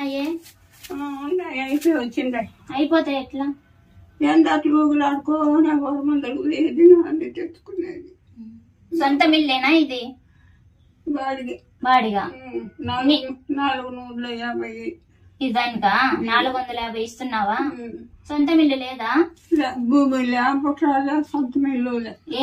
ఉన్నాయి, అయిపోయి వచ్చిందా. అయిపోతాయి ఎట్లా? ఎంత అట్లు ఊగులు ఆడుకో, నాకు మందలు ఏది అన్ని తెచ్చుకునేది. సొంత మిల్లేనా ఇది? బాడిగా. బాడిగా 450. ఇదానికా 450 ఇస్తున్నావా? సొంత మిల్లు లేదా? భూమిలే, పుట్టాలే, సొంత మిల్లు.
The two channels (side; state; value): both; identical; correlation 1.00